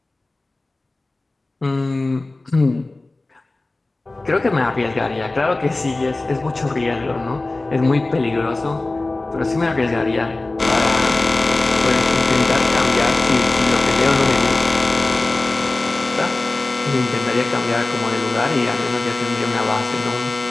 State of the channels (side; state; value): right; quieter; 3.0 dB